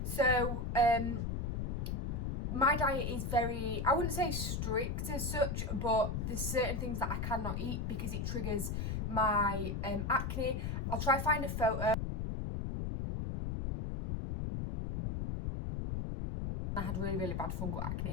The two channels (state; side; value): noise; left; rumble, 2 dB below the sound